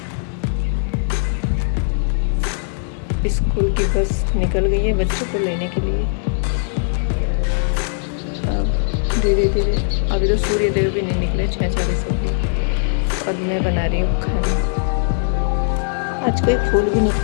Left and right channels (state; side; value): silent; right; 65 dB below the other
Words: स्कूल की बस निकल गई है बच्चों को लेने के लिए। अब धीरे धीरे, अभी तो सूर्य देव भी नहीं निकले, 6:40 हो गई और मैं बना रही हूँ खाना। आज कोई फूल भी